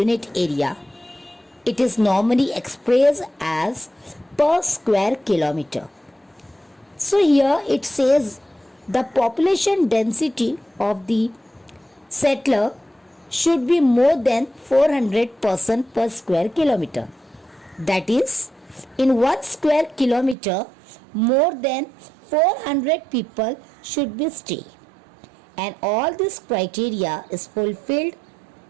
area. It is normally expressed as per square kilometer. So here it says the population density of the settler should be more than 400 person per square kilometer. That is, in 1 square kilometer, more than 400 people should be stay. And all this criteria is fulfilled,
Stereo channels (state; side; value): drops out; left; at 20.4 s